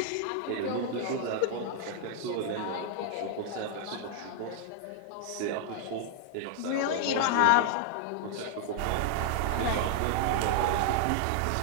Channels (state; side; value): different; both; correlation 0.00